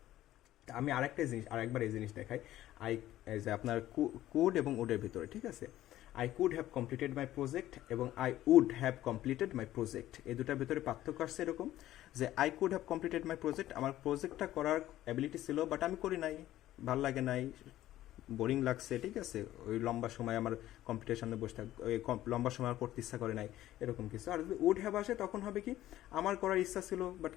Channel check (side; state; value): right; quieter; 14.1 dB